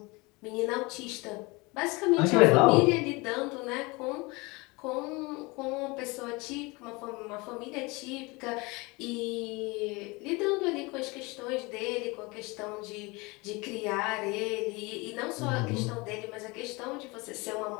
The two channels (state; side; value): quieter; right; 25.4 dB